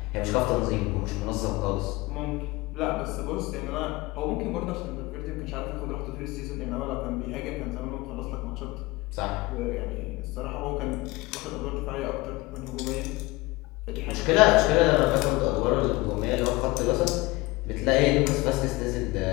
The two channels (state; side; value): quieter; right; 21.7 dB